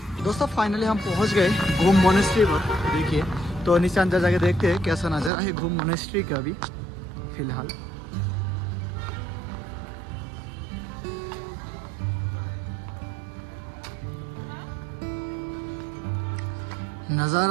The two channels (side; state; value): left; drops out; at 5.3 s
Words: दोस्तों फाइनली हम पहुँच गए गोम मोनेस्ट्री पर। देखिए तो नीचे अंदर जाके देखते हैं कैसा नज़ारा है गोम मोनेस्ट्री का अभी फिलहाल।